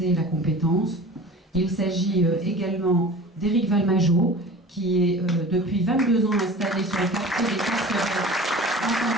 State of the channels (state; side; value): normal; both; correlation 0.40